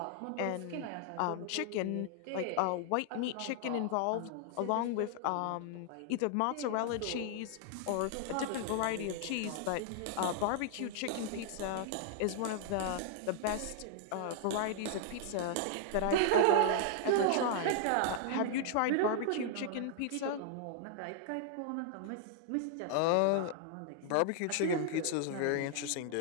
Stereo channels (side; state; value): both; different; correlation -0.01